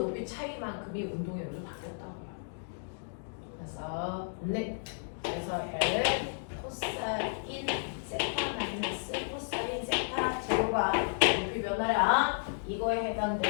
차이만큼이 운동의 에너지로 바뀌었다고요. 그래서 네. 그래서 L 코사인 세타 마이너스 코사인 세타 제로가 높이 변화량 이거에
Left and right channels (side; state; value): right; silent; digital silence